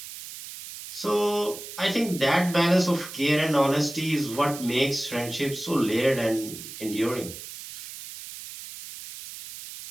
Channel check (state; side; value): noise; right; hiss, 12 dB below the sound